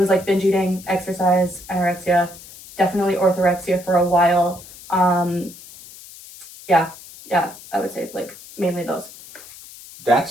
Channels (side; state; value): left; noise; hiss, 18 dB below the sound